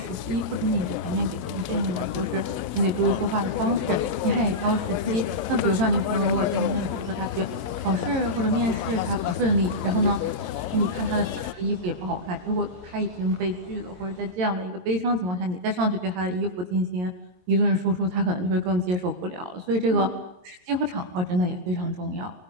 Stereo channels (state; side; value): late; left; 22 ms